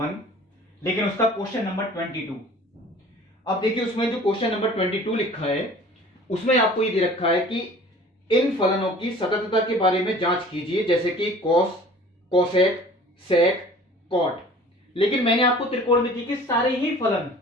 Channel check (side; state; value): both; normal; correlation 0.47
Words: लेकिन उसका क्वेश्चन नंबर 22। अब देखिए, उसमें जो क्वेश्चन नंबर 22 लिखा है उसमें आपको ये दे रखा है कि इन फलनों की सततता के बारे में जांच कीजिए, जैसे कि कॉस, कोसेक, सेक, कॉट। लेकिन मैंने आपको त्रिकोणमिति के सारे ही फलन